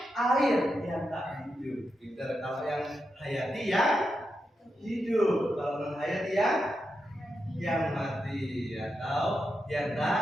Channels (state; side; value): normal; both; correlation 0.86